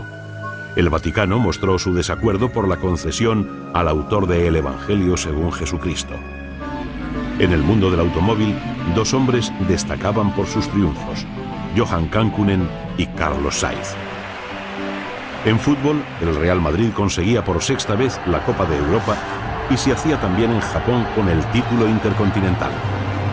El Vaticano mostró su desacuerdo por la concesión al autor de El Evangelio según Jesucristo. En el mundo del automóvil, 2 hombres destacaban por sus triunfos, Johan Kankkunen y Carlos Sainz. En fútbol, el Real Madrid conseguía por 6ª vez la Copa de Europa y se hacía también en Japón con el título intercontinental.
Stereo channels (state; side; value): identical; both; correlation 1.00